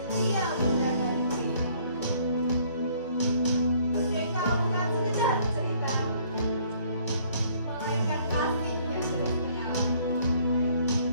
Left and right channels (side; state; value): both; inverted; correlation -0.61